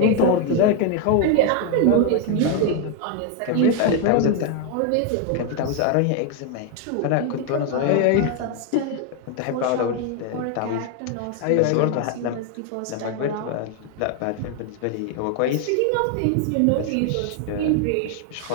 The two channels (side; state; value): both; different; correlation 0.01